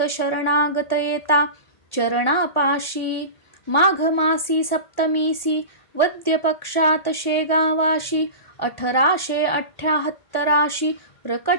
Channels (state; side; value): late; right; 1.4 ms